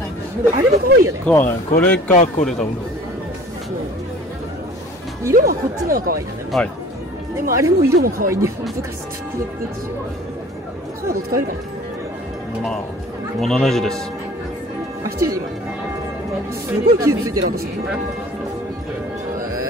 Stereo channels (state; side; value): normal; both; correlation 0.47